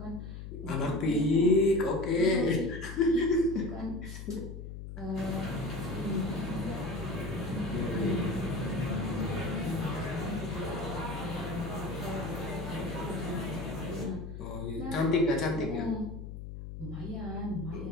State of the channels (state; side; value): noise; left; hum, 9 dB below the sound